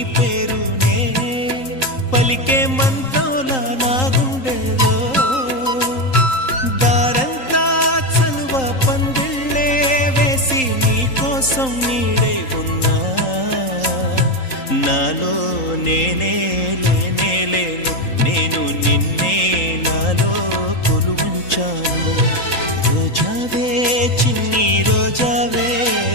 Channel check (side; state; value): right; late; 3.8 ms